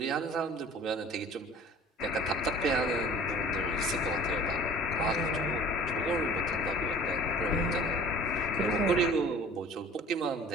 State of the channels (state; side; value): normal; both; correlation 0.46